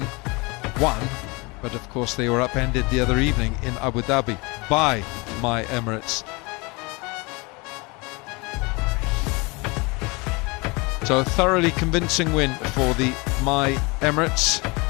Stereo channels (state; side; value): quieter; right; 27.0 dB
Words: 1, but of course they were upended the other evening in Abu Dhabi by My Emirates. So a thoroughly convincing win for the My Emirates.